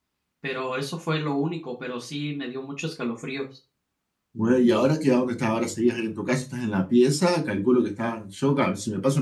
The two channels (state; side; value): identical; both; correlation 1.00